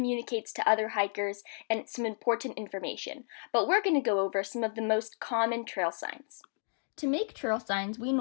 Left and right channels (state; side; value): silent; right; 56 dB below the other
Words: to other hikers and some important information, but we're going to go over some of the most common trail signs. To make trail signs, we